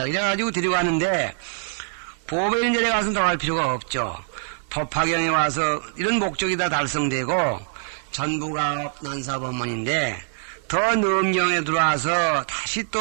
이래가지고 데리고 가는데 보배 이런 데 가서는 더 갈 필요가 없죠. 법화경에 와서 이런 목적이 다 달성되고 전부가 난사법문인데 더 능엄경에 들어와서 다시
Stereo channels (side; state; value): left; silent; 63 dB below the other